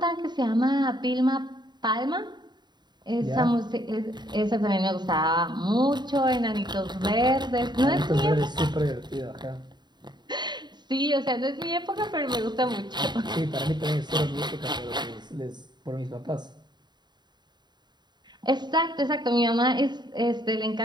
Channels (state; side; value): late; left; 0.21 ms